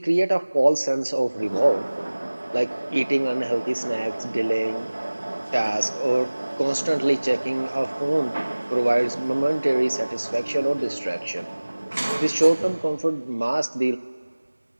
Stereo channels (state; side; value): inverted; both; correlation -1.00